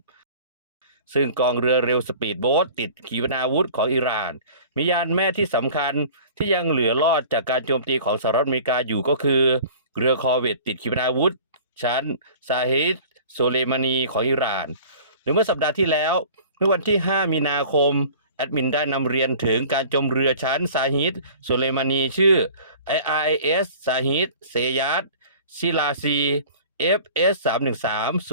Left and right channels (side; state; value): both; inverted; correlation -0.44